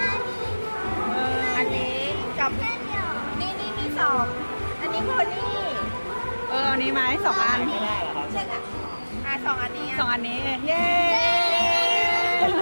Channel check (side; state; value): both; inverted; correlation -1.00